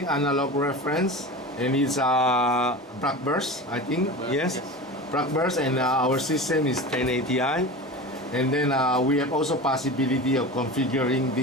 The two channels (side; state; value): both; normal; correlation 0.30